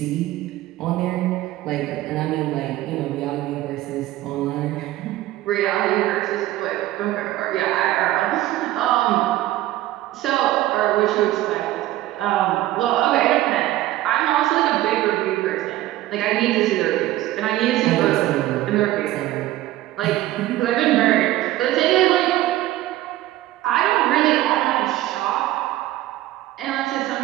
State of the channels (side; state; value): left; quieter; 15.4 dB